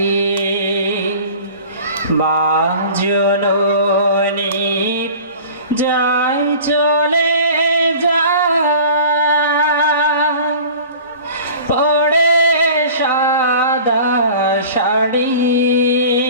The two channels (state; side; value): inverted; both; correlation -0.42